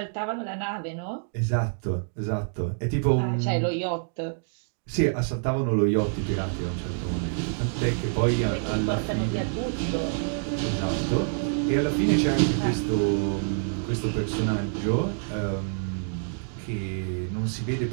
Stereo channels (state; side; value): silent; left; digital silence